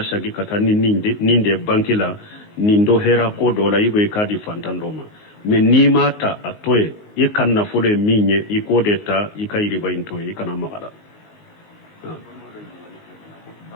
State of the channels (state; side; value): late; right; 19 ms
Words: sagi ka taa ni nin de banki la nin dɔ hɛra ko dɔ la i bɛ k'a di fantan dɔ ma mɛ n'i m'a ta a to ye i ka nafolo ye min ye i k'o de ta i ka riba in to ye i kana maga la